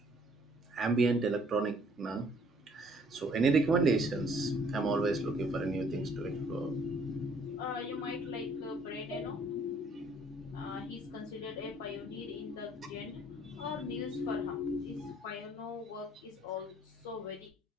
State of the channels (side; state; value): both; normal; correlation 0.60